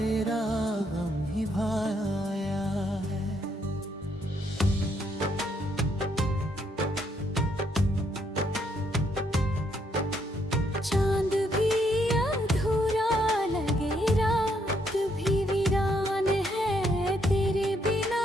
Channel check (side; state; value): both; normal; correlation 0.73